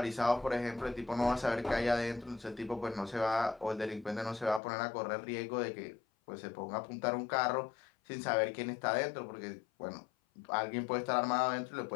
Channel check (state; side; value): drops out; right; at 4.6 s